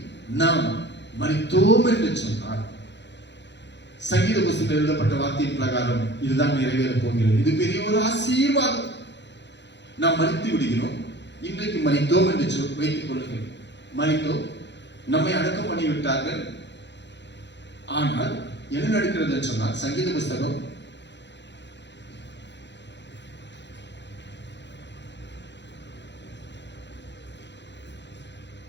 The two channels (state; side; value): late; right; 0.51 ms